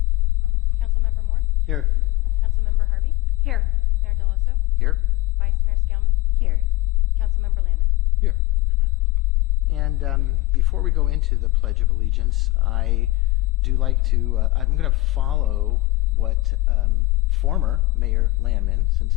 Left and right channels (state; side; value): quieter; right; 19.2 dB